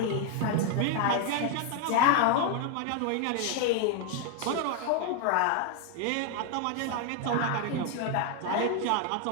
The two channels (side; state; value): both; different; correlation 0.01